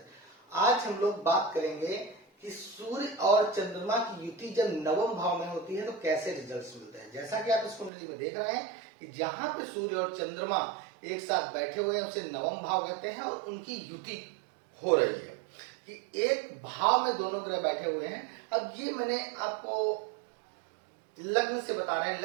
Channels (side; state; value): left; drops out; at 7.9 s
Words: आज हम लोग बात करेंगे कि सूर्य और चंद्रमा की युति जब नवम भाव में होती है तो कैसे रिजल्ट्स मिलते हैं। जैसा कि आप इस कुंडली में देख रहे हैं कि जहां पे सूर्य और चंद्रमा एक साथ बैठे हुए हैं उसे नवम भाव कहते हैं और उनकी युति हो रही है कि एक भाव में दोनों ग्रह बैठे हुए हैं। अब ये मैंने आपको लग्न से बता रहे हैं,